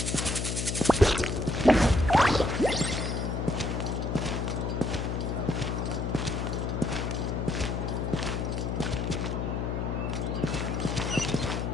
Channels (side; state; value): left; noise; hum, 1 dB below the sound